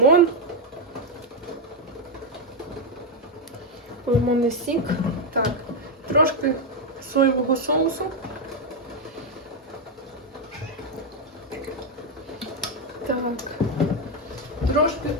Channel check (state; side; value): normal; both; correlation 0.04